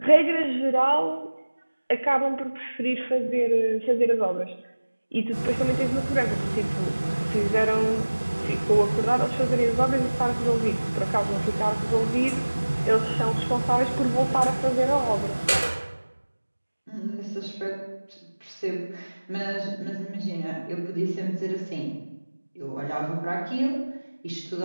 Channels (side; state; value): both; inverted; correlation -1.00